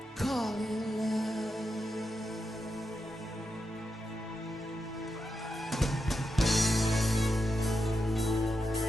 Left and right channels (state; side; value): normal; both; correlation 0.87